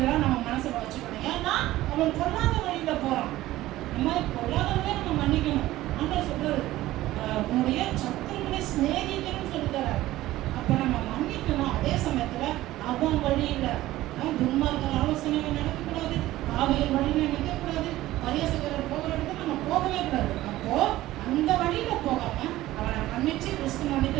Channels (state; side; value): quieter; left; 16.0 dB